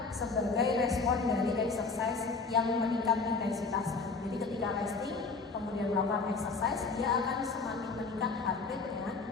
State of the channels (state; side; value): quieter; right; 4.3 dB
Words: sebagai respon dari exercise yang meningkat intensitasnya. Jadi ketika resting kemudian melakukan exercise, dia akan semakin meningkat heart rate-nya